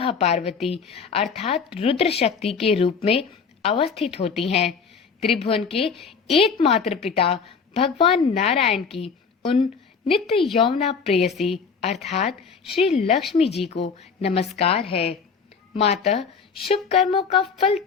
पार्वती अर्थात रुद्र शक्ति के रूप में अवस्थित होती हैं। त्रिभुवन के एकमात्र पिता भगवान नारायण की उन नित्य यौवना प्रेयसी अर्थात श्री लक्ष्मी जी को नमस्कार है। माता, शुभ कर्मों का फल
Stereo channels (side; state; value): right; quieter; 5.7 dB